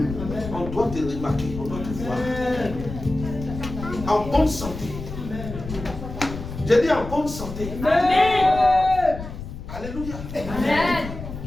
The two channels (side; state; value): left; noise; rumble, 9 dB below the sound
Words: On doit te remarquer, on doit te voir. En bonne santé. J'ai dit en bonne santé. Amen. Alléluia. Amen.